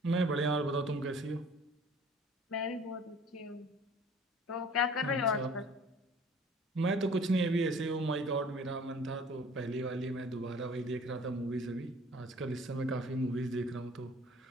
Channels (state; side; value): normal; both; correlation 0.50